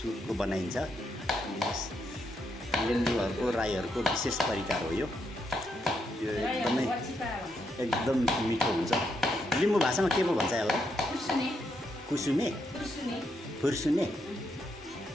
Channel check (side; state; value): both; normal; correlation 0.79